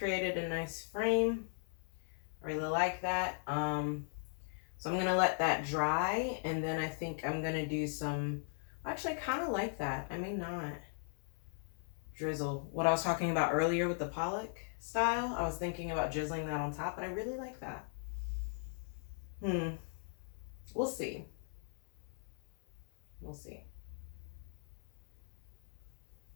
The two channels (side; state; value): right; silent; 52 dB below the other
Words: a nice frame. I really like that. So I'm gonna let that dry, and then I think I'm gonna do some, actually I kind of like that. I may not drizzle. What I was talking about earlier with the Pollock style, I was thinking about drizzling that on top, but I really like that. We'll see. We'll see.